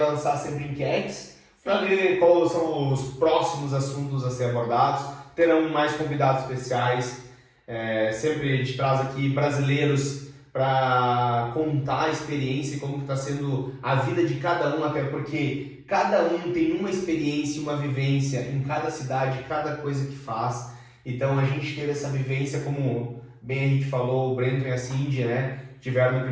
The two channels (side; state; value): both; identical; correlation 1.00